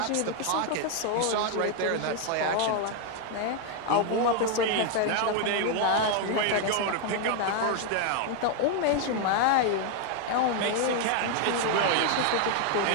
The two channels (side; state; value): both; different; correlation 0.00